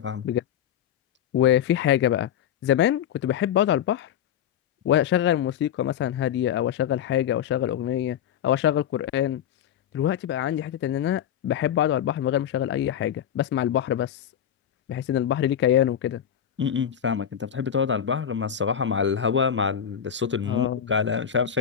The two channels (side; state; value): right; quieter; 9.5 dB